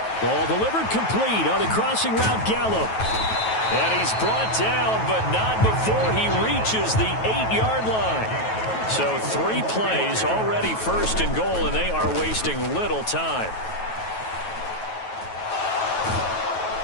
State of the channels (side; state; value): right; late; 9.2 ms